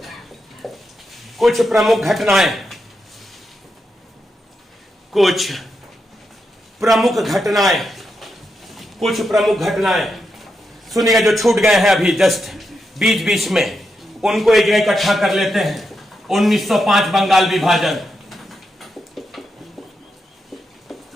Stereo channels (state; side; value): normal; both; correlation 0.85